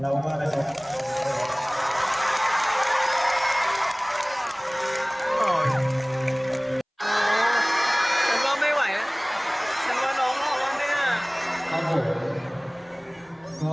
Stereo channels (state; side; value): identical; both; correlation 1.00